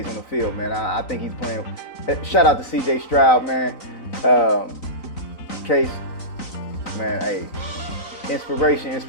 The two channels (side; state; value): right; late; 3.9 ms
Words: on the field, man. I think he's playing. Shout out to Cj Stroud, man. Kase, man, hey, inspiration